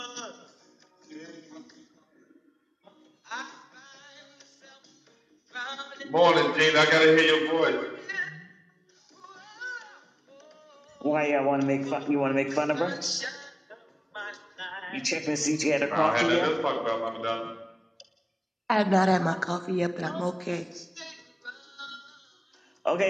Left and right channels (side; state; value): both; identical; correlation 1.00